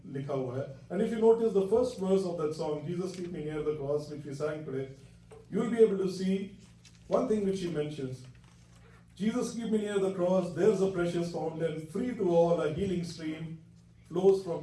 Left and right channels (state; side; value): identical; both; correlation 1.00